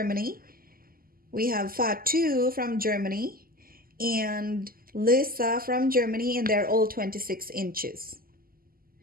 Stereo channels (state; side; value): late; left; 0.42 ms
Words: We have Fatou from Germany and Lisa from Germany, and they're all 26 inches.